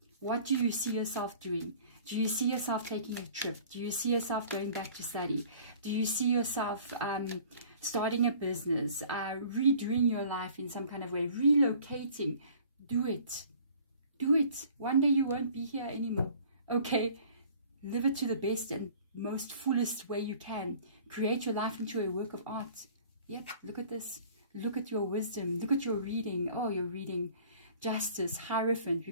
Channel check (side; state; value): both; inverted; correlation -0.50